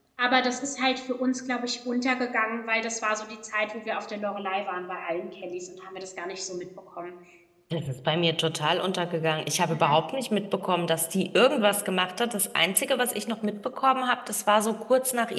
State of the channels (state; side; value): identical; both; correlation 1.00